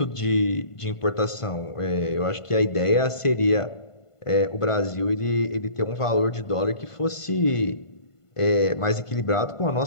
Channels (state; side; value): late; right; 1.5 ms